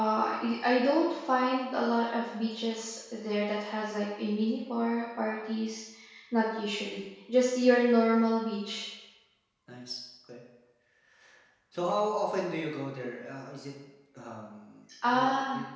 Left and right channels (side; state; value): both; identical; correlation 1.00